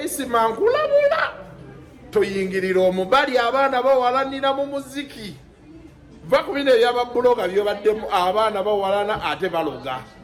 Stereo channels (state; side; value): identical; both; correlation 1.00